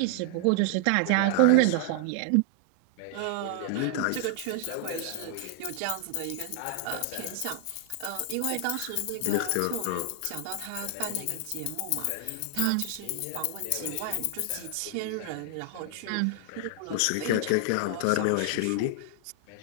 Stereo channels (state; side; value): different; both; correlation 0.00